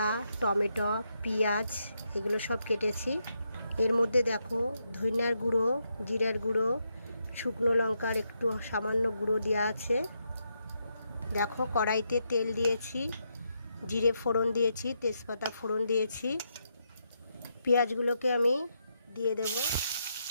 টমেটো, পেঁয়াজ এগুলো সব কেটেছি। এর মধ্যে দেখো ধনিয়ার গুঁড়ো, জিরার গুঁড়ো, শুকনো লঙ্কার একটু সামান্য গুঁড়ো দেওয়া আছে। দেখো কড়াইতে তেল দিয়েছি, জিরে ফোড়ন দিয়েছি, তেজপাতা ফোড়ন দিয়েছি। পেঁয়াজগুলোকে আমি দিয়ে দেব।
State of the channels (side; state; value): both; inverted; correlation -0.81